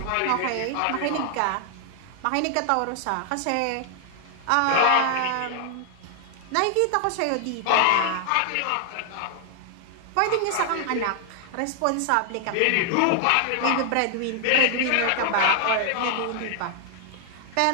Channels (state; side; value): different; both; correlation 0.00